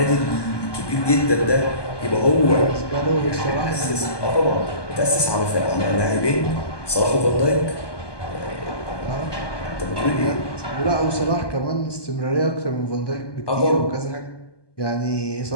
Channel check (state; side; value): late; right; 1.2 ms